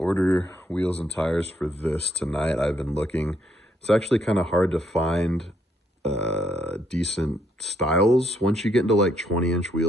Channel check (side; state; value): both; normal; correlation 0.72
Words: wheels and tires for this tonight. I've been looking. It's actually kind of hard to find decent styles. Once you get into like 20-inch